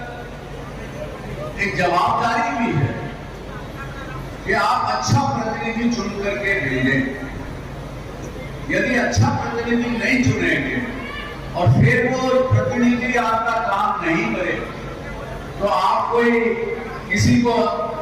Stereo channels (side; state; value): both; identical; correlation 1.00